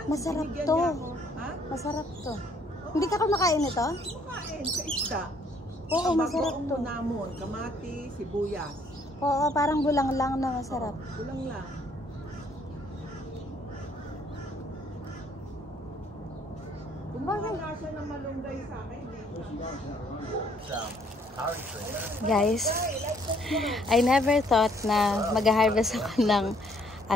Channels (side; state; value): both; normal; correlation 0.64